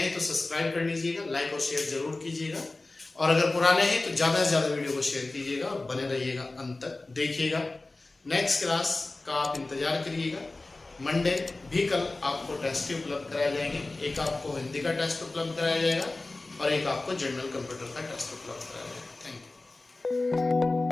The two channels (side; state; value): right; quieter; 3.1 dB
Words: तो सब्सक्राइब कर लीजिएगा, लाइक और शेयर जरूर कीजिएगा, और अगर पुराने हैं तो ज्यादा से ज्यादा वीडियो को शेयर कीजिएगा और बने रहिएगा, अंत तक देखिएगा। नेक्स्ट क्लास का आप इंतजार करिएगा। मंडे भी कल आपको टेस्ट उपलब्ध कराए जाएंगे, एक आपको हिंदी का टेस्ट उपलब्ध कराया जाएगा और एक आपको जनरल कंप्यूटर का टेस्ट उपलब्ध कराया जाएगा। Thank you.